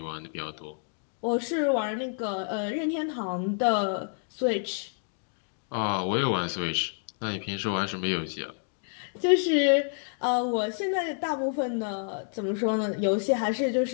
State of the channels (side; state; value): right; silent; 59 dB below the other